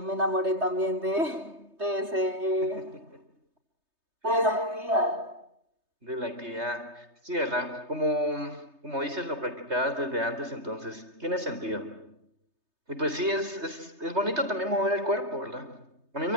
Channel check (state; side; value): late; left; 3.2 ms